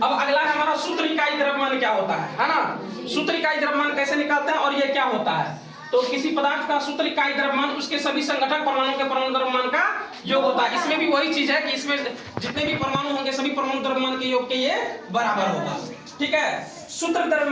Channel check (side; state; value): both; identical; correlation 1.00